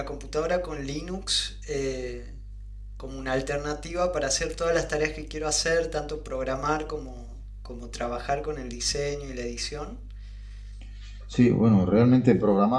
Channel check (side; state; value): both; identical; correlation 1.00